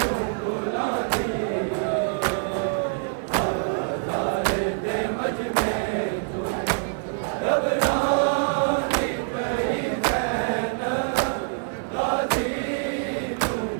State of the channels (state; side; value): silent; left; digital silence